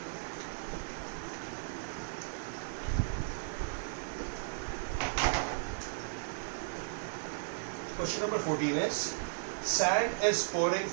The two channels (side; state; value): left; silent; digital silence